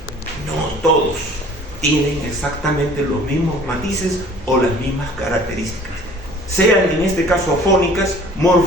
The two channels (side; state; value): both; normal; correlation 0.50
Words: no todos tienen exactamente los mismos matices o las mismas características, sean en este caso fónicas,